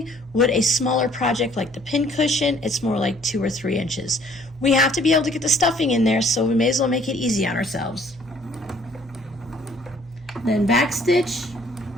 With a smaller project like the pincushion, it's more like 2 or 3 inches. We have to be able to get the stuffing in there, so we may as well make it easy on ourselves. Then back stitch,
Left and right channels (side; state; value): both; normal; correlation 0.59